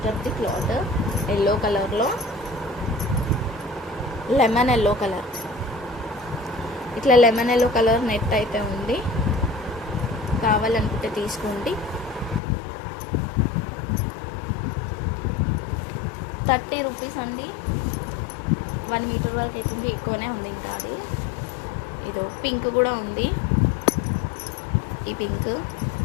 క్లాత్, ఎల్లో కలర్లో, లెమన్ ఎల్లో కలర్, ఇట్లా లెమన్ ఎల్లో కలర్ నెట్ అయితే ఉంది. కావాలనుకుంటే తీసుకోండి. 30 రూపీస్ అండి. 1 మీటర్ వరకు అవుతుంది. ఎక్కువనే ఉంది ఇంకా. అది ఇదో పింక్ కూడా ఉంది. ఈ పింక్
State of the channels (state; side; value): drops out; right; at 12.4 s